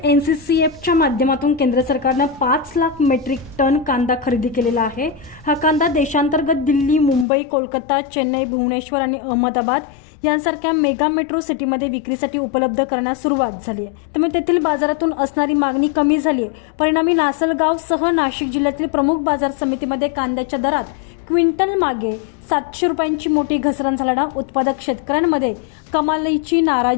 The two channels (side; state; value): right; drops out; at 7.2 s